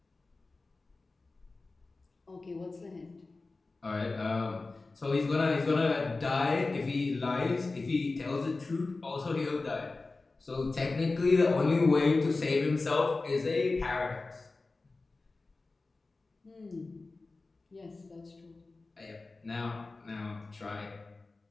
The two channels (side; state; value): right; quieter; 3.5 dB